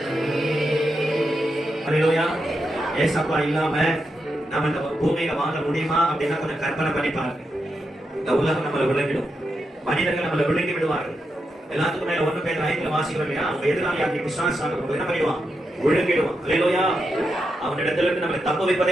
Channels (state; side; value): normal; both; correlation 0.86